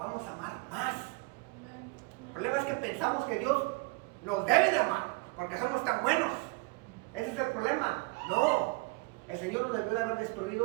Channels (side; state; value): left; quieter; 27.4 dB